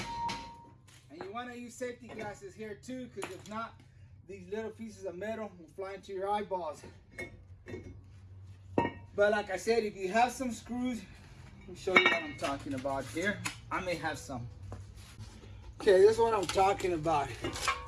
And you want to use safety glasses here too, because if not, these little pieces of metal will fly into your eyeballs. But like I said, if you have some screws, let me show you what I'm talking about here. I may have some. Okay, this is what I'm talking about.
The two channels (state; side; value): identical; both; correlation 1.00